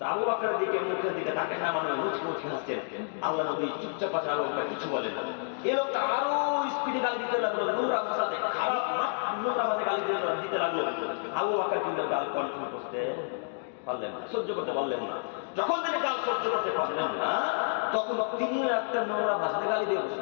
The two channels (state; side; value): silent; right; digital silence